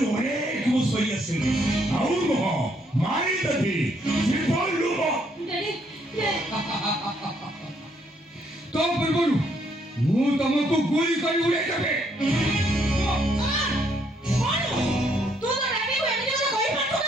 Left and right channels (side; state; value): both; normal; correlation 0.70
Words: ଅନେକ ମୁଁ ସହି ଆସିଲି। ଆଉ ନୁହଁ ମାରିଦେବି ଜୀବନରୁ। ତ ପୂର୍ବରୁ ମୁଁ ତମକୁ ଗୁଳି କରି ଉଡ଼େଇଦେବି।